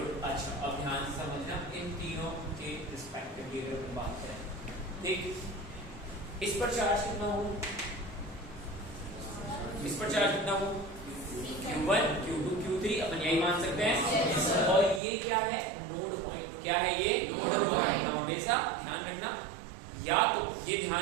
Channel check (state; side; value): drops out; left; at 15.0 s